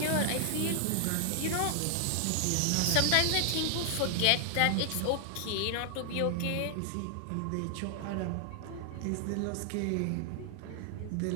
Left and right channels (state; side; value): different; both; correlation 0.00